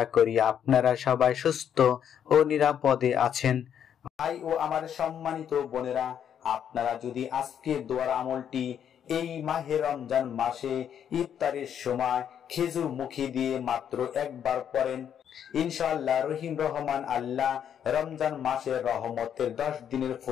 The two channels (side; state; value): right; quieter; 8.9 dB